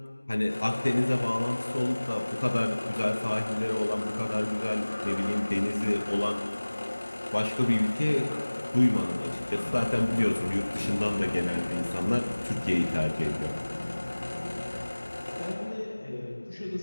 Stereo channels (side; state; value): both; inverted; correlation -1.00